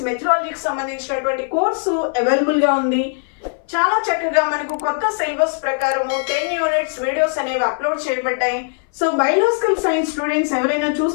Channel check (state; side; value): silent; right; 61 dB below the other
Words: మెథడాలజీకి సంబంధించినటువంటి కోర్సు అవైలబుల్గా ఉంది. చాలా చక్కగా మనకు కొత్త సిలబస్ ప్రకారము 10 యూనిట్స్ వీడియోస్ అనేవి అప్లోడ్ చేయబడ్డాయి. సో బయోలాజికల్ సైన్స్ స్టూడెంట్స్ ఎవరైనా